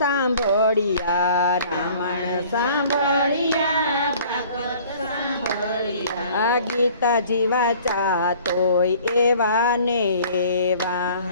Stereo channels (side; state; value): both; inverted; correlation -0.51